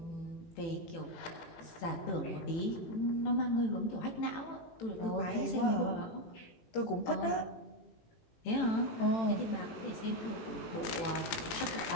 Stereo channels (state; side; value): late; right; 18 ms